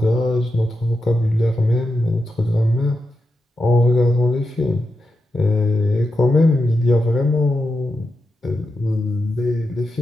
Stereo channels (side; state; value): both; normal; correlation 0.88